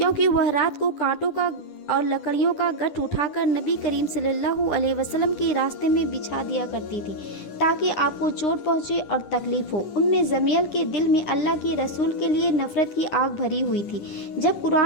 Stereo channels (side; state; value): right; late; 10 ms